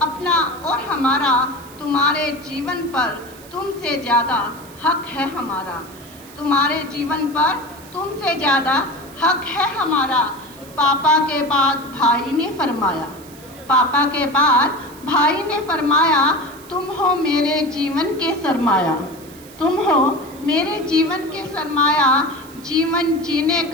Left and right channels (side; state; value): right; noise; hiss, 21 dB below the sound